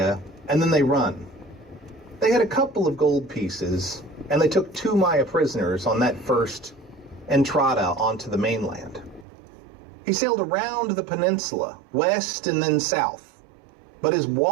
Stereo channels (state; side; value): drops out; left; at 9.2 s